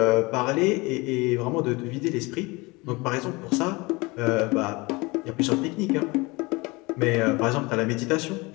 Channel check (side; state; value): right; quieter; 24.5 dB